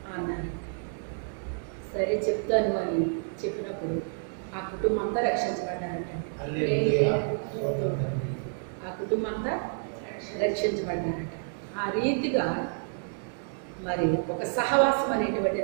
అన్నాను. సరే చెప్తాను అని చెప్పినప్పుడు ఆ కుటుంబం అంతా రక్షించబడ్డారట. ఆ కుటుంబం అంతా రక్షించబడ్డారట. ఆ రీతిగా మరి ఒక సహవాసం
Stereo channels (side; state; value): left; silent; digital silence